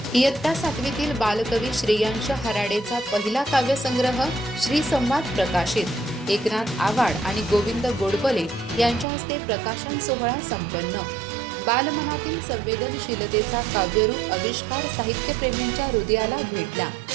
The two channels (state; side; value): drops out; left; at 9.1 s